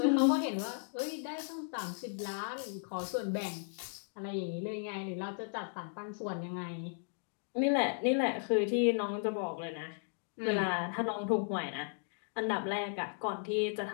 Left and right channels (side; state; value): right; silent; 54 dB below the other